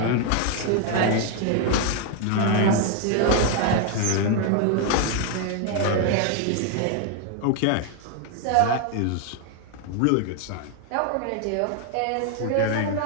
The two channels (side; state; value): both; different; correlation 0.01